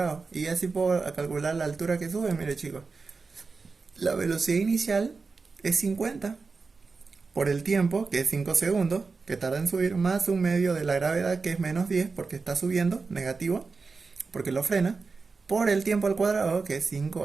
Y así puedo calcular la altura que sube, miren chicos. La velocidad inicial es 50 por el tiempo, que es 5 segundos, que tarda en subir, más un medio de la gravedad, que es menos 10, porque está subiendo, negativo, porque lo frena, por el tiempo al cuadrado, que es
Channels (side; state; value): left; quieter; 4.4 dB